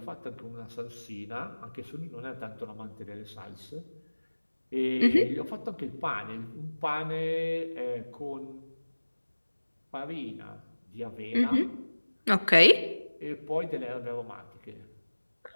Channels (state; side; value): inverted; both; correlation -1.00